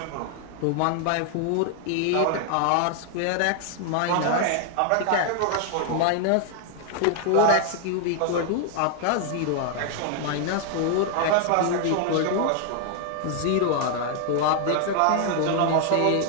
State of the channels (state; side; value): different; both; correlation 0.00